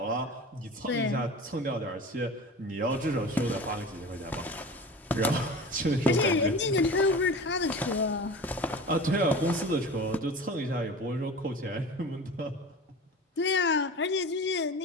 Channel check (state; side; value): normal; both; correlation 0.35